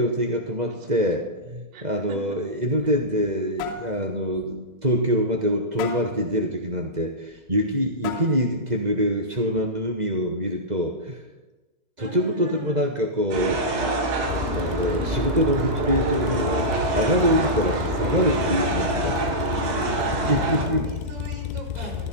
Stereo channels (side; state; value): left; late; 2.0 ms